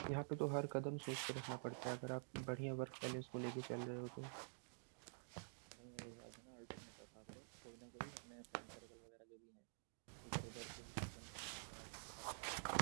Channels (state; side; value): silent; left; digital silence